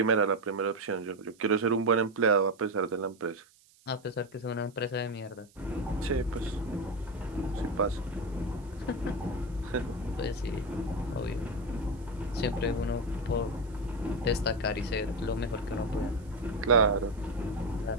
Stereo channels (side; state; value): right; noise; hiss, 29 dB below the sound